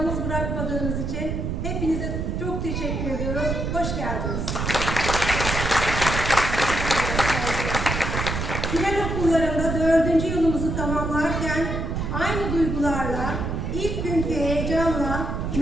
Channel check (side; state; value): right; noise; rumble, 2 dB below the sound